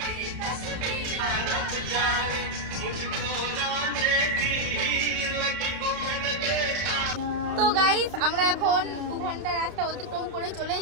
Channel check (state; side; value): late; left; 32 ms